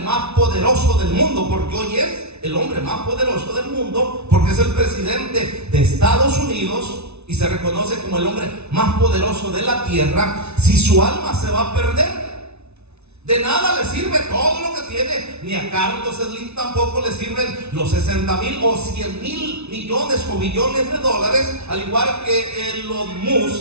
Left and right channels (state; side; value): late; left; 0.81 ms